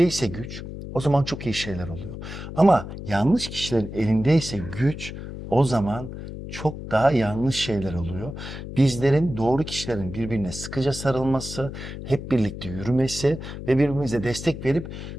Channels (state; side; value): noise; left; hum, 9 dB below the sound